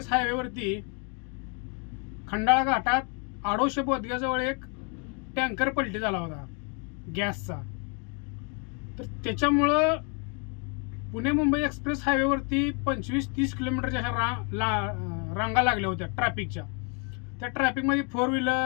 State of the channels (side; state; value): right; quieter; 36.9 dB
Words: हायवेवरती खंडाळा घाटात आडोशे बोदग्याजवळ एक टँकर पलटी झाला होता गॅसचा. तर त्याच्यामुळं पुणे मुंबई एक्सप्रेस हायवेवरती 25-30 किलोमीटरच्या रांगा लागल्या होत्या ट्रॅफिकच्या. त्या ट्रॅफिकमध्ये 4